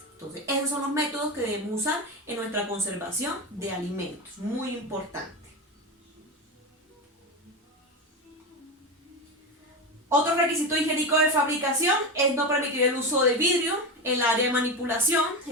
Entonces, esos son los métodos que debemos usar en nuestra conservación de alimentos. Muy importante. Otro requisito higiénico de fabricación es no permitir el uso de vidrio en el área de manipulación.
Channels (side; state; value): both; normal; correlation 0.18